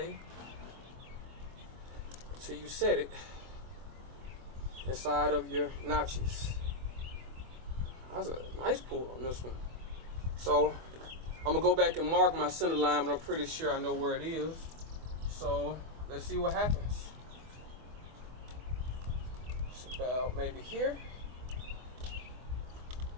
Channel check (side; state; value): left; late; 24 ms